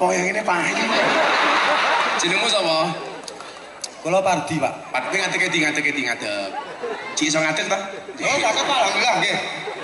yang ini payu. Jenengmu sapa? Kula Pardi, Pak. Pardi ngadeg. Cik iso ngadeg ta? Oh, Pak, alhamdulillah nggih.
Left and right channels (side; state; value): both; identical; correlation 1.00